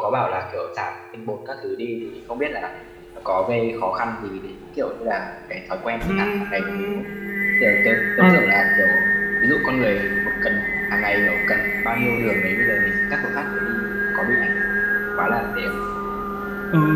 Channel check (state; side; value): identical; both; correlation 1.00